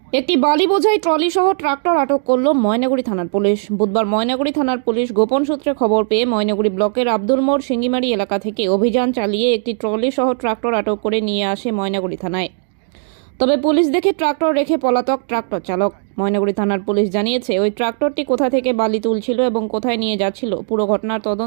একটি বালি বোঝাই ট্রলি সহ ট্রাক্টর আটক করল ময়নাগুড়ি থানার পুলিশ। বুধবার ময়নাগুড়ি থানার পুলিশ গোপন সূত্রে খবর পেয়ে ময়নাগুড়ি ব্লকের আব্দুল মোড় সিঙ্গিমারি এলাকা থেকে অভিযান চালিয়ে একটি ট্রলি সহ ট্রাক্টর আটক করে নিয়ে আসে ময়নাগুড়ি থানায়। তবে পুলিশ দেখে ট্রাক্টর রেখে পলাতক ট্রাক্টর চালক। ময়নাগুড়ি থানার পুলিশ জানিয়েছে, ওই ট্রাক্টরটি কোথা থেকে বালি তুলছিল এবং কোথায় নিয়ে যাচ্ছিল পুরো ঘটনার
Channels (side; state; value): left; silent; digital silence